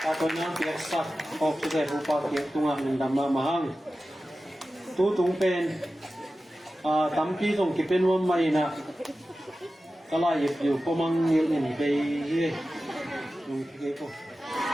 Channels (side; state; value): both; normal; correlation 0.94